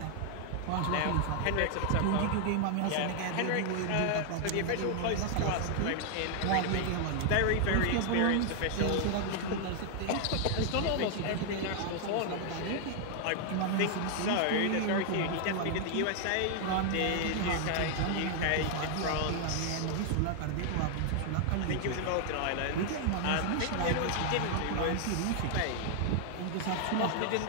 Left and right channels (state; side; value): different; both; correlation 0.00